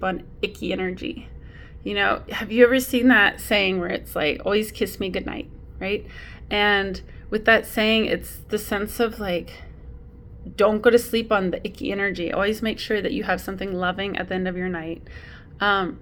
on icky energy? Have you ever seen that saying where it's like, always kiss me goodnight, right? And with that saying, it's the sense of like, don't go to sleep on the icky energy. Always make sure that you have something loving at the end of your night.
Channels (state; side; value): identical; both; correlation 1.00